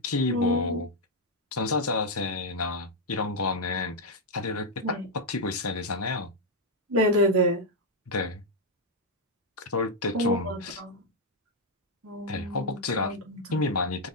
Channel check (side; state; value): both; normal; correlation -0.02